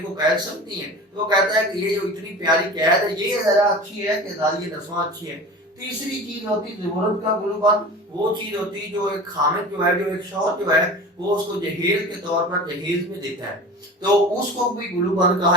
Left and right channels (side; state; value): both; normal; correlation 0.35